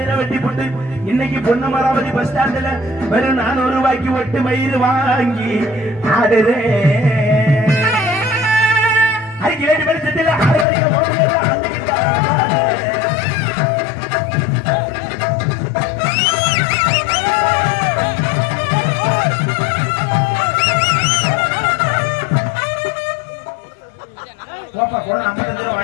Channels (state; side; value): drops out; right; at 10.7 s